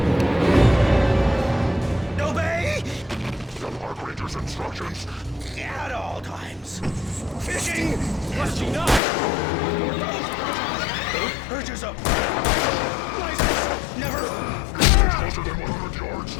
Obey! The Park Ranger's instructions. At all times. Fishing! Rusty, no! Urges up. License! Never! Closer than 100 yards.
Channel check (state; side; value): drops out; right; at 9.0 s